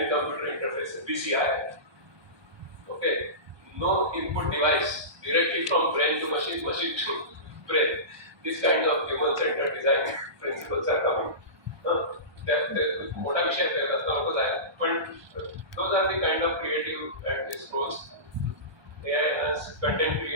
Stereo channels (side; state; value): left; late; 1.2 ms